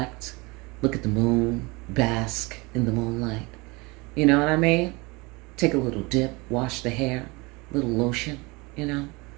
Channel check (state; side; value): quieter; left; 25.6 dB